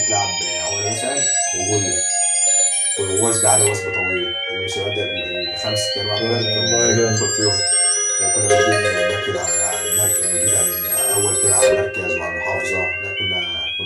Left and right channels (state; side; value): identical; both; correlation 1.00